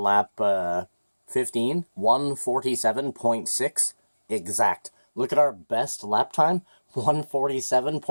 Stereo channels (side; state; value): both; inverted; correlation -1.00